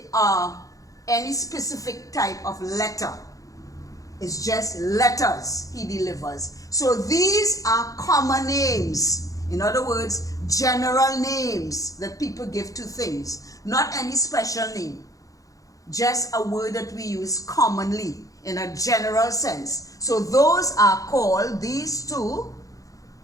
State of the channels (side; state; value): right; late; 0.17 ms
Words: any specific type of letter. It's just letters he delivers. So these are common names. In other words, general names that people give to things. Not any special name. Just a word that we use commonly. in a general sense. So those are called, these two